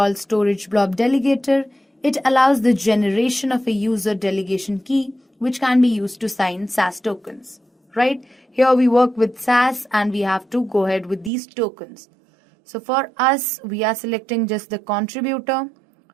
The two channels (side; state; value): left; drops out; at 11.3 s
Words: storage blob delegator. It allows the generation of a user delegation key, which can be used to sign SAS tokens, right? Here we work with SAS and we have to go ahead with these tokens. So for us, we are selecting just the contributor.